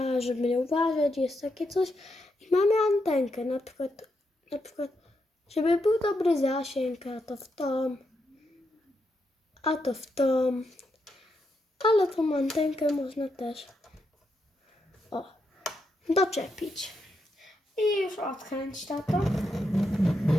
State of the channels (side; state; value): both; normal; correlation 0.82